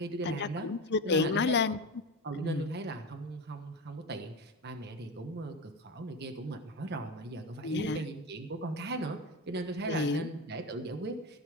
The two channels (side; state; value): both; normal; correlation 0.21